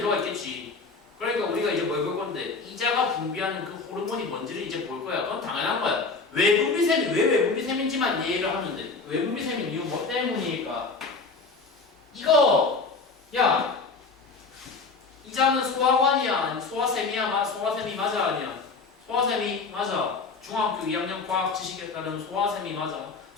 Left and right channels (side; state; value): right; quieter; 4.3 dB